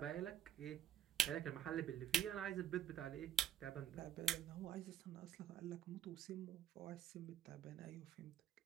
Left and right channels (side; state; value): left; quieter; 9.8 dB